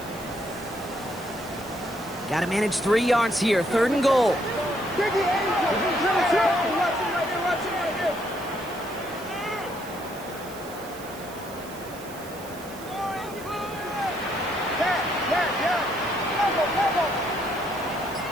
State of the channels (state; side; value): noise; right; hiss, 17 dB below the sound